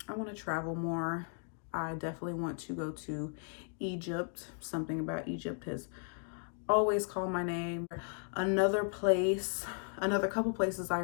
I want to travel more. I definitely want to go to Egypt. Something about Egypt has always called my name. Another couple places I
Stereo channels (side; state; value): right; silent; 54 dB below the other